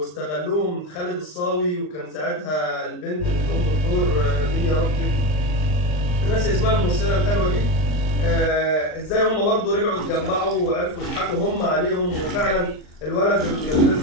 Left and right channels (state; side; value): late; right; 39 ms